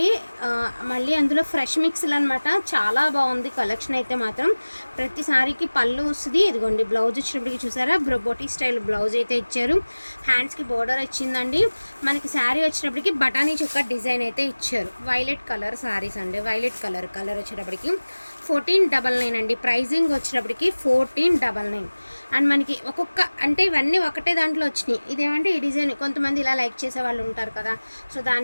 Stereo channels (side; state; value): both; inverted; correlation -1.00